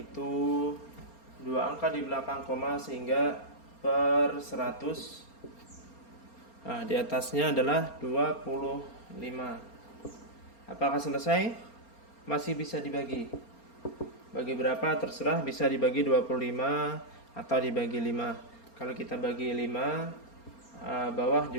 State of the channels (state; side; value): late; right; 4.3 ms